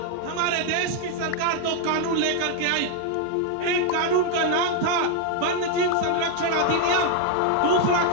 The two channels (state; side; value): different; both; correlation 0.01